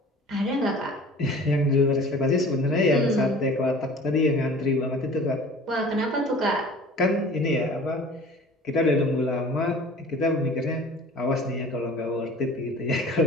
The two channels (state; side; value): normal; both; correlation 0.45